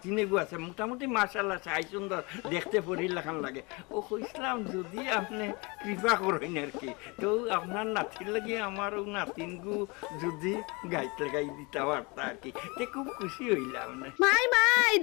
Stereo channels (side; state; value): right; quieter; 27.7 dB